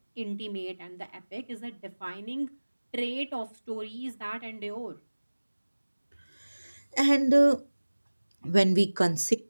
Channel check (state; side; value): inverted; both; correlation -1.00